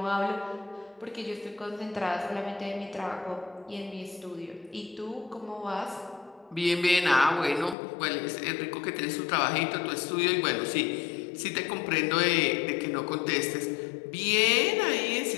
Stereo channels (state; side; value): drops out; right; at 7.8 s